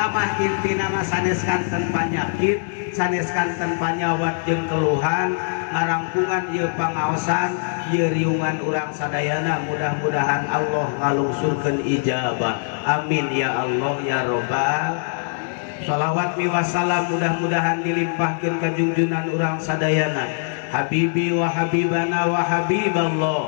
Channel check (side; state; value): right; silent; digital silence